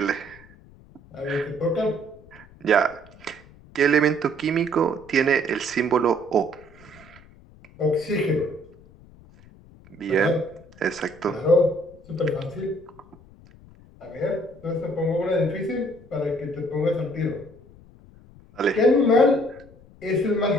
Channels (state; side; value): noise; left; rumble, 24 dB below the sound